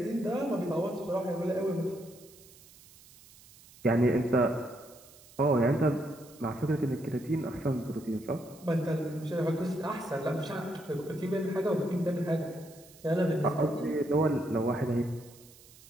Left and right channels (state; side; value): noise; right; hiss, 23 dB below the sound